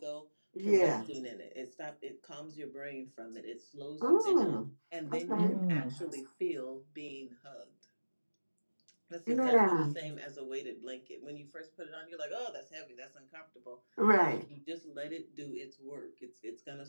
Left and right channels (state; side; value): inverted; both; correlation -1.00